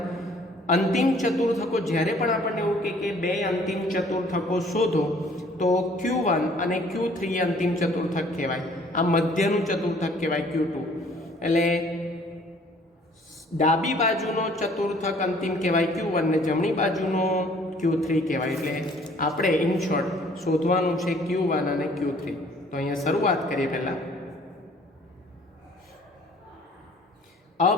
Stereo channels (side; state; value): both; normal; correlation 0.57